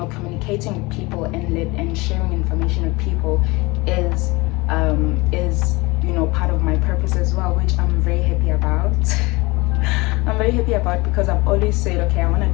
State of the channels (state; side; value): quieter; right; 23.9 dB